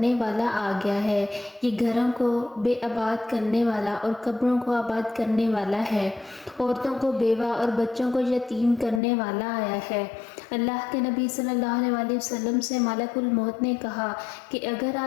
والا آ گیا ہے، یہ گھروں کو بے آباد کرنے والا اور قبروں کو آباد کرنے والا ہے، عورتوں کو بیوہ اور بچوں کو یتیم کرنے والا آیا ہے۔ اللہ کے نبی صلی اللہ علیہ وآلہ وسلم سے ملک الموت نے کہا کہ اگر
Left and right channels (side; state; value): right; drops out; at 9.0 s